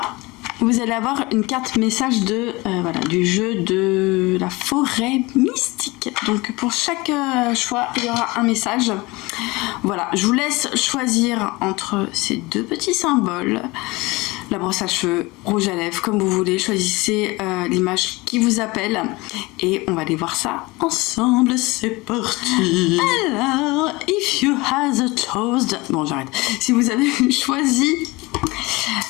vous allez avoir une carte message de voilà, du jeu de la forêt mystique. Donc pour chaque choix, il y aura un message. Voilà, je vous laisse choisir entre ces deux petits symboles. La brosse à cheveux, rouge à lèvres, comme vous voulez. Choisissez l'image qui vous appelle. Et on va aller voir ça ensemble. C'est parti. Alors, if you have a toast... Bon, j'arrête. Si vous avez choisi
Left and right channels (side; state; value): right; quieter; 22.9 dB